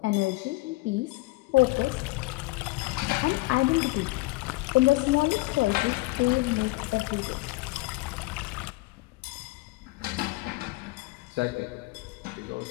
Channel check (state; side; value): quieter; right; 22.4 dB